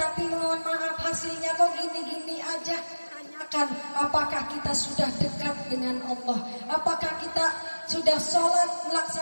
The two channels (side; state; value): both; inverted; correlation -1.00